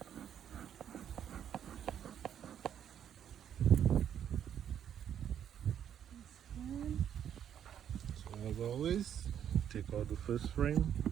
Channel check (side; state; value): left; quieter; 9.4 dB